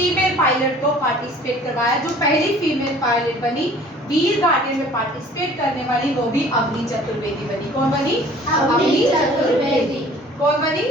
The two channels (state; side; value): normal; both; correlation 0.50